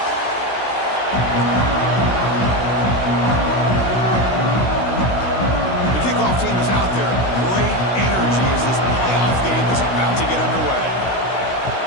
Team is out there. Great energy as this playoff game is about to get underway.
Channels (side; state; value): right; late; 16 ms